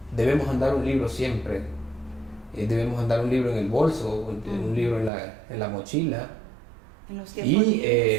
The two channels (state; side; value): drops out; left; at 5.1 s